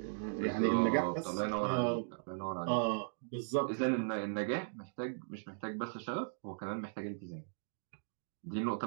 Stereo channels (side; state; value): left; silent; digital silence